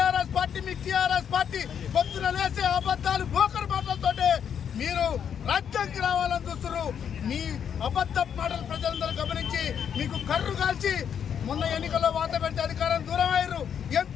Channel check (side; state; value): right; quieter; 8.2 dB